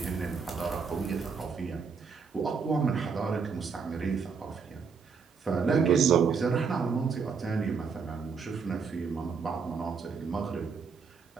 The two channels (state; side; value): quieter; left; 5.6 dB